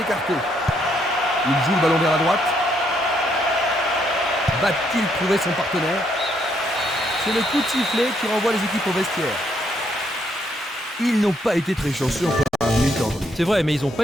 écarté. Il joue le ballon vers la droite. Va-t-il trouver son partenaire? C'est le coup de sifflet qui renvoie les équipes au vestiaire. Ils n'ont pas été très chanceux en première mi-temps. C'est vrai, mais ils n'ont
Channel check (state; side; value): normal; both; correlation 0.73